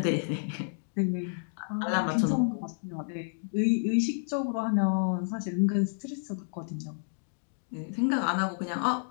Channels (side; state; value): right; silent; digital silence